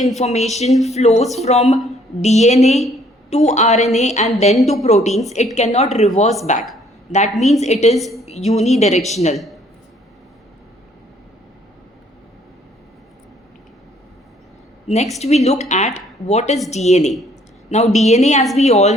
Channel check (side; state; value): both; normal; correlation 0.62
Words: flows from DNA to RNA and then to proteins, it cannot reverse back. That means it is unidirectional. Next, we look at what is DNA. Now, DNA, as we all